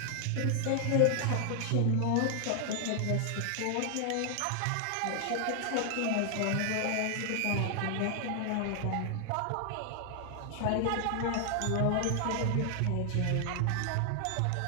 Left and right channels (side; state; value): both; different; correlation 0.00